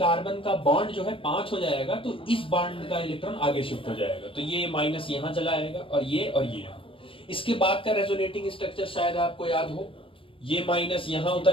का बॉन्ड जो है 5 हो जाएगा तो इस बॉन्ड का इलेक्ट्रॉन आगे शिफ्ट हो जाएगा, तो ये माइनस यहां चला आएगा और ये। इसके बाद का रेजोनेटिंग स्ट्रक्चर शायद आपको याद हो, ये माइनस यहां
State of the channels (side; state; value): right; late; 0.26 ms